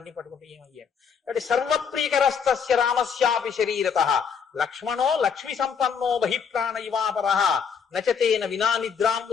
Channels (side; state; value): right; quieter; 6.6 dB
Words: పట్టుకుంటే ఏమయ్యాడు అంటే, సర్వప్రీకరస్తస్య రామస్యాపి శరీరత లక్ష్మణో లక్ష్మి సంపన్నో బహిప్రాణ ఇవాపర నచతేన వినా నిద్రాం